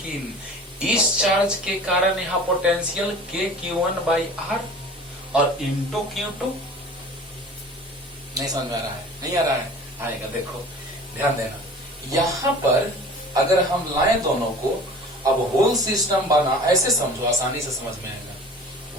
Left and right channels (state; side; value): normal; both; correlation 0.42